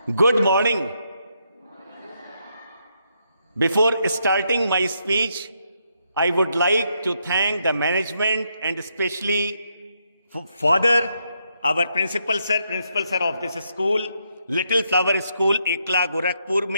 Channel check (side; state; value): both; inverted; correlation -0.78